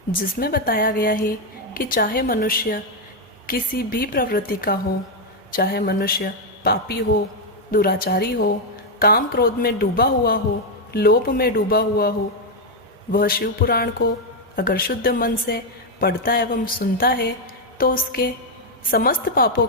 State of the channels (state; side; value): normal; both; correlation 0.02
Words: जिसमें बताया गया है कि चाहे मनुष्य किसी भी प्रवृत्ति का हो, चाहे मनुष्य पापी हो, दुराचारी हो, काम क्रोध में डूबा हुआ हो, लोभ में डूबा हुआ हो, वह शिव पुराण को अगर शुद्ध मन से पढ़ता एवं सुनता है तो उसके समस्त पापों